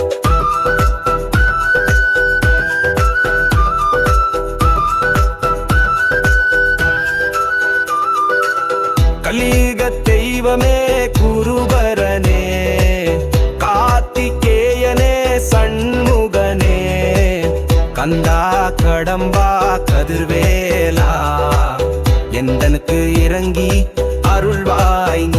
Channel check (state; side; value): identical; both; correlation 1.00